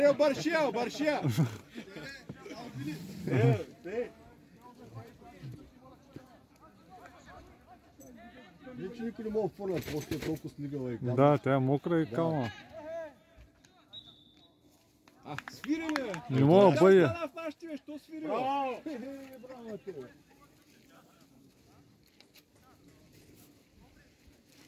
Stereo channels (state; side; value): identical; both; correlation 1.00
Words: баршия, баршия! Вече никой не мога да фърнат, просто е толкова снигала и капа. Да, тя е мокра и калма. Свири, бе! Не мога да бъде. В нашите, бе, що свири, бе? Браво! Браво, те, бе!